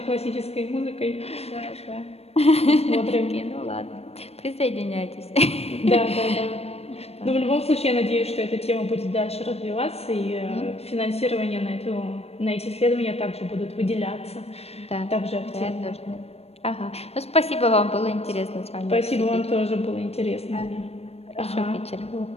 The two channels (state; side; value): late; right; 0.30 ms